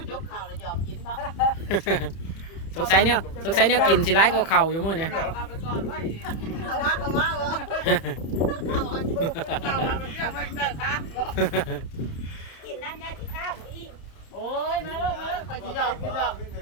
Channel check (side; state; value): right; late; 30 ms